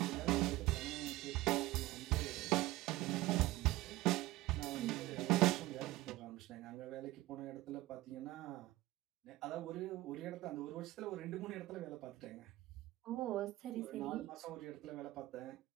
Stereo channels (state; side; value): quieter; left; 17.8 dB